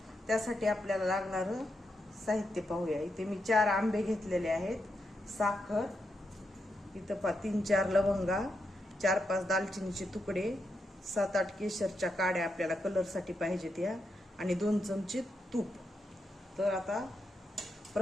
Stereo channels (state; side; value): normal; both; correlation 0.84